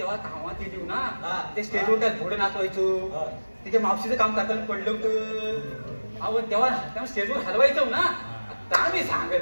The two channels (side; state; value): both; inverted; correlation -1.00